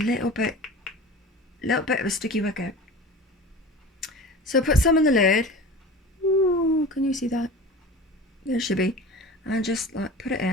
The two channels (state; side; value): normal; both; correlation 0.36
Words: bit of a sticky wicket. So put some in the lid. Ooh, can you see that? There should be. And just like put it